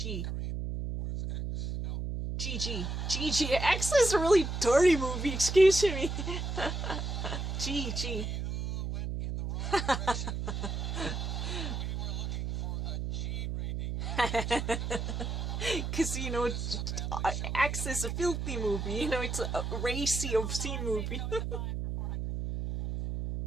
X is a really dirty movie, excuse me. G. Because, X is a filthy movie. It's a racy, obscene movie.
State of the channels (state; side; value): noise; right; hum, 3 dB below the sound